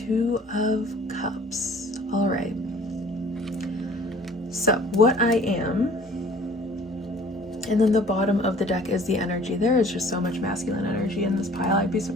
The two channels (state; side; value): normal; both; correlation 0.51